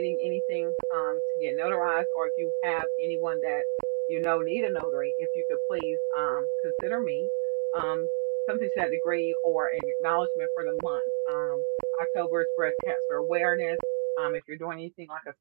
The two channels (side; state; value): left; silent; digital silence